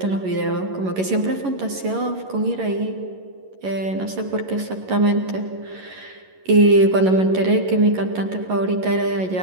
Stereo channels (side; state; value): left; late; 11 ms